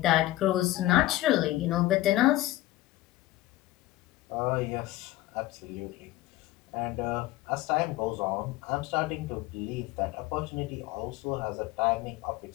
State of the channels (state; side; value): quieter; right; 16.6 dB